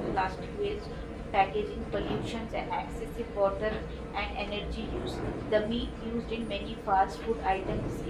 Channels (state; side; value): identical; both; correlation 1.00